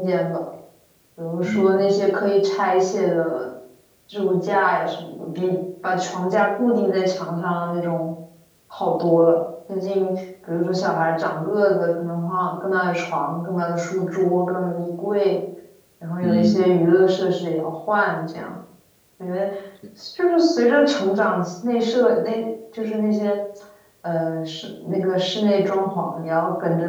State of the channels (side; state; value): both; identical; correlation 1.00